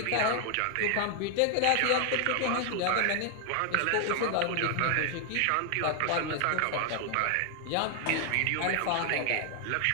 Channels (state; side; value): different; both; correlation 0.00